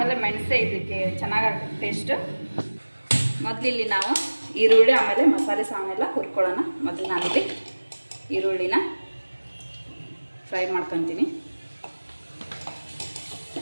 ಮೆಣಸೇ ಇದಕ್ಕೆ ಚೆನ್ನಾಗಾಗುತ್ತೆ ಟೇಸ್ಟು. ಮೊದಲಿಲ್ಲಿ ನಾವು ಈರುಳ್ಳಿ ಆಮೇಲೆ ಮಸಾಲೆ ಸಾಮಾನೆಲ್ಲ ಹುರ್ಕೊಳ್ಳೋಣ. ಮೊದಲು ನಾನಿಲ್ಲಿ ಈರುಳ್ಳಿನ ಫ್ರೈ ಮಾಡ್ಕೊತೀನಿ.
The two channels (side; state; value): both; inverted; correlation -1.00